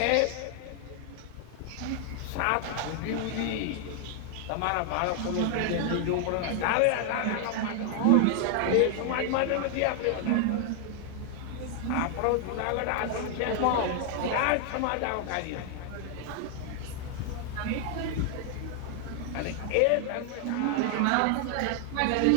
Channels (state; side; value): different; both; correlation 0.00